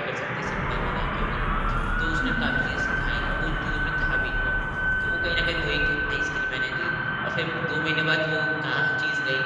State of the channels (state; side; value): identical; both; correlation 1.00